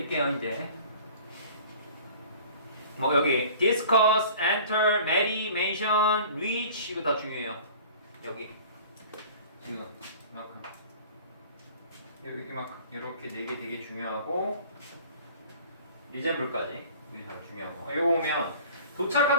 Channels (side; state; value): both; inverted; correlation -0.45